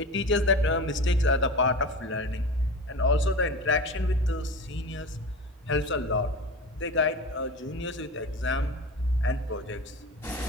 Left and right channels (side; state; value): both; normal; correlation 0.31